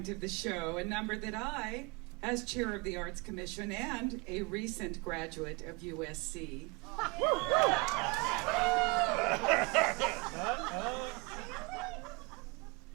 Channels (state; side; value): quieter; left; 27.7 dB